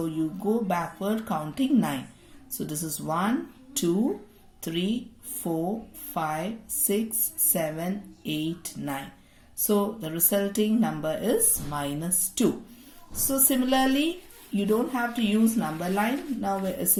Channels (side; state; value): both; identical; correlation 1.00